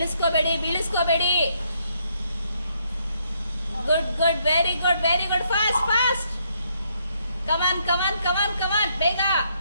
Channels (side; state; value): both; inverted; correlation -0.73